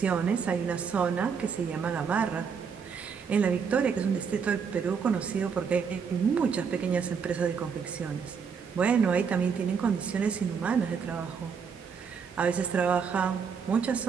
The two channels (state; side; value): quieter; left; 6.3 dB